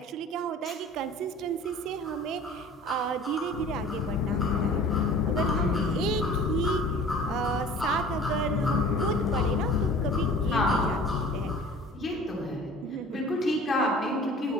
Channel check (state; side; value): normal; both; correlation 0.45